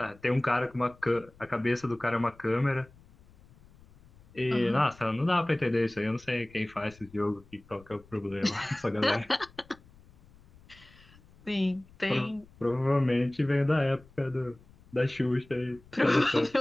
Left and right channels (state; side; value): noise; left; rumble, 26 dB below the sound